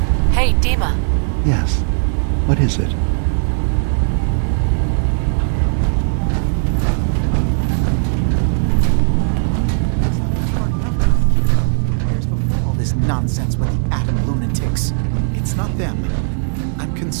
Hey, Dima. Yes. What is it? I was having a hard enough time keeping up with repairs before all this nonsense with the atom lunatics. It's not them. I'm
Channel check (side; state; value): left; silent; 61 dB below the other